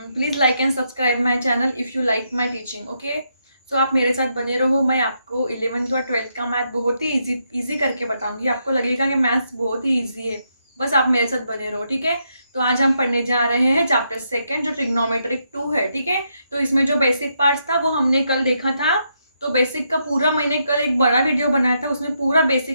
Please like and subscribe my channel if you like my teaching. Okay, so आप मेरे साथ बने रहो. मैं आपको 11th और 12th का मैथ बहुत ही इजी करके बताऊंगी. आपको लगेगा कि मैथ्स बहुत ही इजी है, बस आप मेरे साथ बने रहो. ठीक है, तो आज हम पढ़ने जा रहे हैं चैप्टर सेकंड जो ट्रिग्नोमेट्रिक 2 है. ठीक है, तो इसमें जो बेसिक पार्ट्स था वो हमने कल देखा था. तो बेसिक का पूरा मैंने कल एक बड़ा वीडियो बनाया था, उसमें पूरा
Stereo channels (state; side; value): inverted; both; correlation -0.79